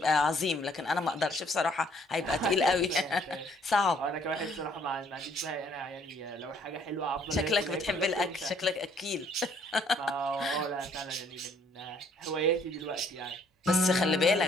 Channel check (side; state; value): both; normal; correlation 0.63